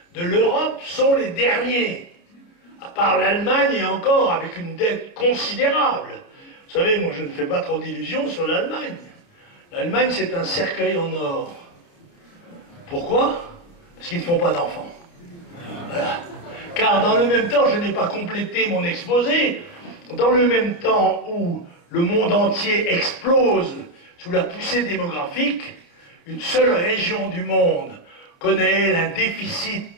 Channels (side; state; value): right; late; 29 ms